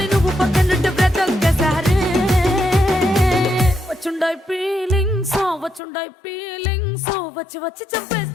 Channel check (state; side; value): drops out; right; at 5.8 s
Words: నువ్వు పక్కనుంటే బ్రతొక్కసారి వచ్చుండాయి ఫీలింగ్స్ వచ్చి వచ్చి